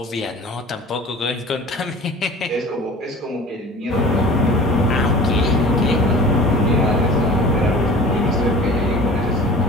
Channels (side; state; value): both; normal; correlation 0.41